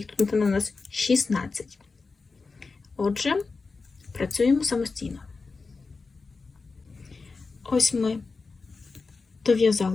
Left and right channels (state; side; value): quieter; right; 4.2 dB